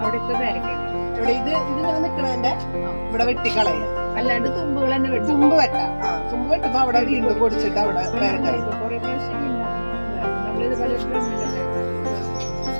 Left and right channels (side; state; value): both; inverted; correlation -1.00